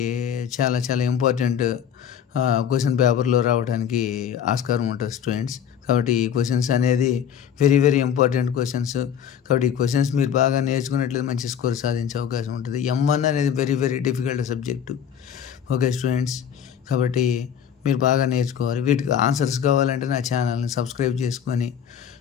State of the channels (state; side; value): quieter; right; 8.7 dB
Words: చాలా చాలా ఇంపార్టెంట్ క్వశ్చన్ పేపర్లో రావడానికి ఆస్కారం ఉంటుంది స్టూడెంట్స్. కాబట్టి ఈ క్వశ్చన్స్ అనేది వెరీ వెరీ ఇంపార్టెంట్ క్వశ్చన్స్. కాబట్టి ఈ క్వశ్చన్స్ మీరు బాగా నేర్చుకున్నట్లయితే మంచి స్కోర్ సాధించే అవకాశం ఉంటుంది. M1 అనేది very very difficult subject. Okay students, కాబట్టి మీరు బాగా నేర్చుకోవాలి. వీటికి ఆన్సర్స్ కావాలంటే నా ఛానల్ని సబ్స్క్రైబ్ చేసుకొని